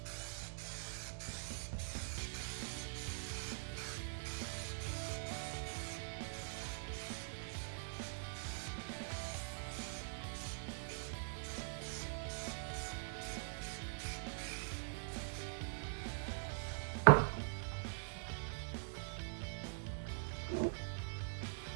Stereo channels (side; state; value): left; silent; digital silence